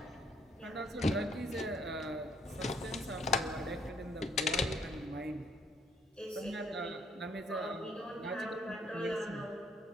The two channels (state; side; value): normal; both; correlation 0.64